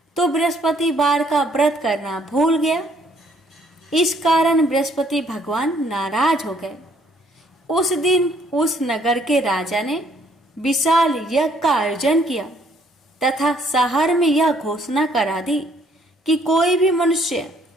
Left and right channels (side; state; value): both; normal; correlation 0.65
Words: तो बृहस्पतिवार का व्रत करना भूल गया। इस कारण बृहस्पति भगवान नाराज हो गए। उस दिन उस नगर के राजा ने विशाल यज्ञ का आयोजन किया तथा शहर में यह घोषणा करा दी कि कोई भी मनुष्य